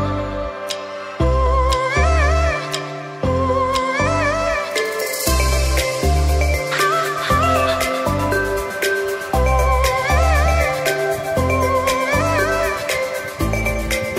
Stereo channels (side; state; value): both; identical; correlation 1.00